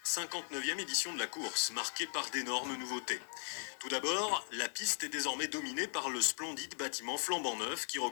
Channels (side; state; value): right; silent; 52 dB below the other